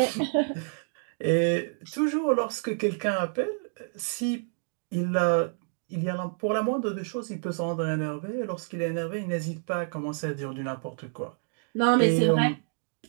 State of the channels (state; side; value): silent; left; 59 dB below the other